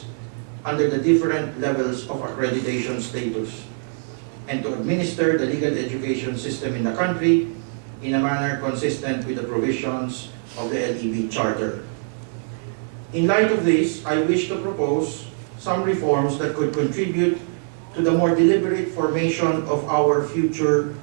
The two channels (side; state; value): left; silent; digital silence